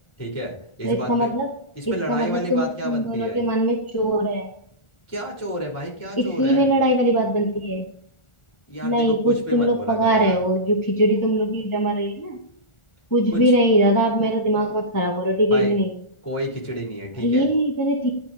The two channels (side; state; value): right; late; 1.4 ms